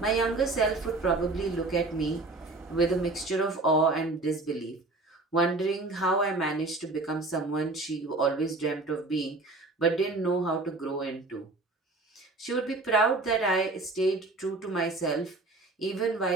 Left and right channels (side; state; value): left; quieter; 3.2 dB